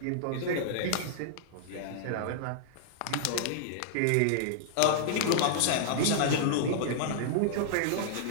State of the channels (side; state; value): both; different; correlation -0.01